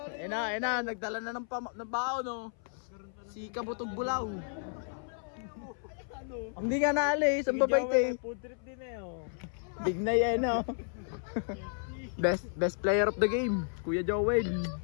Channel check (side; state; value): right; silent; 56 dB below the other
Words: Ayun na, nagdala na ng bao no. Si Kabutog Bulaw. Hindi nga naalis, ang babait eh. Food trip din eh oh. Big na yan no. Best player of the game, Kuya Joel.